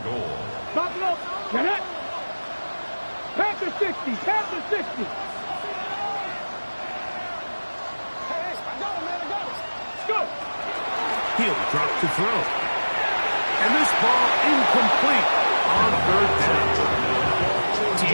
goal. Buffalo. Get it. Panther 60. Panther 60. Go. He'll drop to throw. And this ball incomplete on 3rd down.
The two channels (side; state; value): both; inverted; correlation -1.00